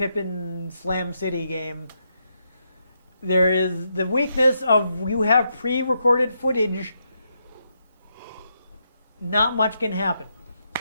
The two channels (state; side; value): inverted; both; correlation -0.81